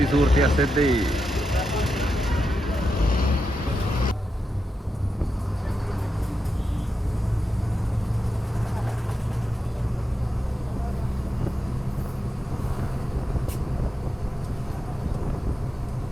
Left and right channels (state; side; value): normal; both; correlation 0.88